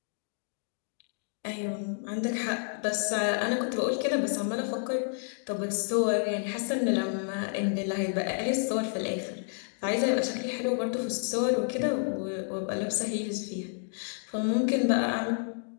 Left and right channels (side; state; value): right; silent; 58 dB below the other